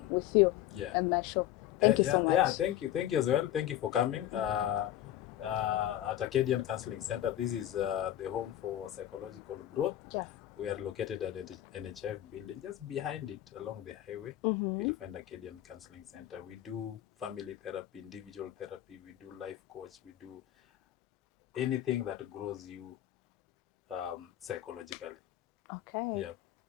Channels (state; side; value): quieter; right; 12.7 dB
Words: with you and my show. Thank you so much. Yeah, thank you. Thank you as well. Thank you for coming. At Acadian Counseling Center, this is the home for psychological growth. Yeah. We are located at the NHF building, just behind it along the highway. You'll find Acadian Counseling Center. We do family therapy, individual therapy, we do life coach, we do anything that grows you psychologically. Okay. Yeah.